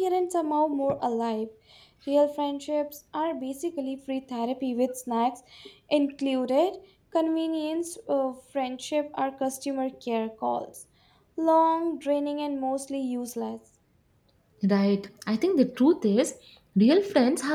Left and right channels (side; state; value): both; identical; correlation 1.00